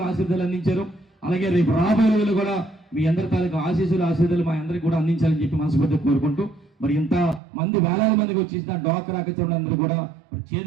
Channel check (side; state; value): left; drops out; at 7.4 s